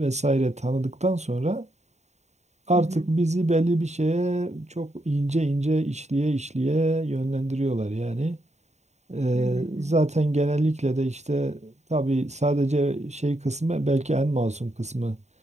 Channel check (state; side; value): late; left; 0.33 ms